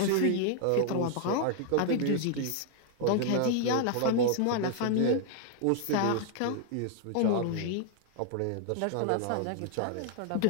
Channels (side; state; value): both; different; correlation 0.00